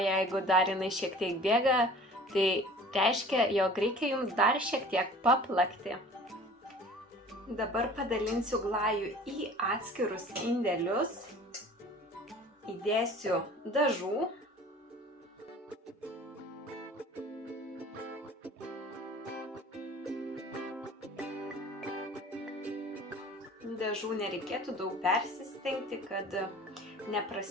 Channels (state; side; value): normal; both; correlation 0.45